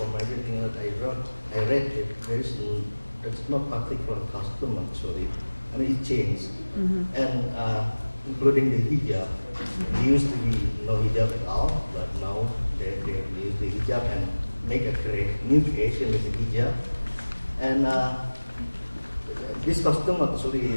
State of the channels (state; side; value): inverted; both; correlation -1.00